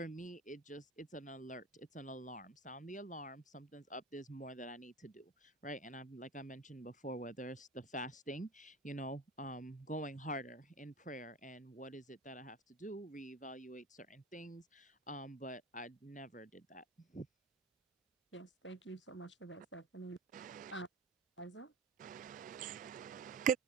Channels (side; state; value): left; quieter; 3.2 dB